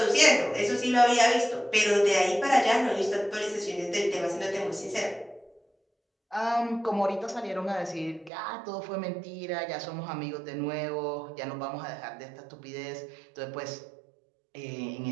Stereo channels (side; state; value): left; drops out; at 8.3 s